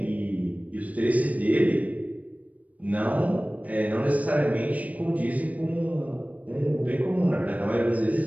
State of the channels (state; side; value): late; left; 0.071 ms